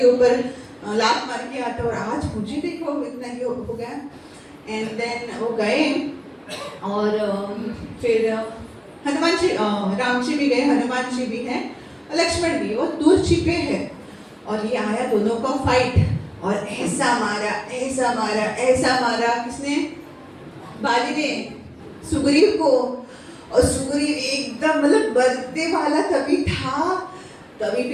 ऊपर लात मार के आता, और आज मुझे देखो इतना ही हो गया। एंड देन वो गए और फिर हनुमान जी, राम जी भी गए, हनुमान जी भी हैं, लक्ष्मण भी, वो दूर छिपे हैं, और ये आया दोनों का फाइट, और ऐसा मारा ऐसा मारा ऐसा मारा, किसने, बाली ने सुग्रीव को, और सुग्रीव एकदम मतलब बरतने वाला तभी था, तभी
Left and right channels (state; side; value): identical; both; correlation 1.00